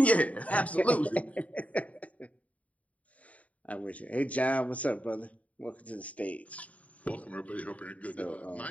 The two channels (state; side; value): late; right; 0.068 ms